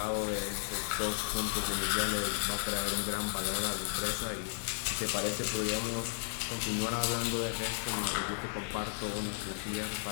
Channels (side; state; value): right; silent; 55 dB below the other